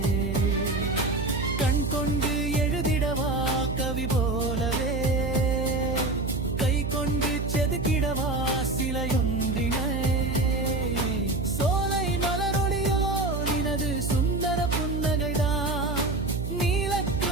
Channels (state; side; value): noise; right; hum, 2 dB below the sound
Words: கண் கொண்டு எழுதிடவா கவி போலவே, கை கொண்டு செதுக்கிடவா சிலையொன்றினை, சோலை மலரொளியோ நினது சுந்தர புன்னகைதான்,